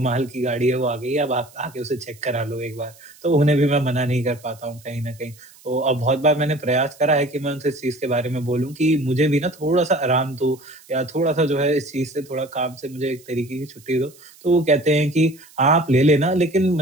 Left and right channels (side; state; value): right; noise; hiss, 25 dB below the sound